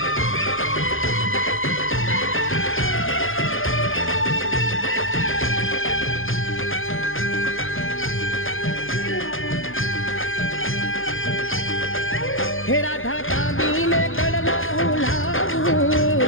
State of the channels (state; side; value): late; right; 0.59 ms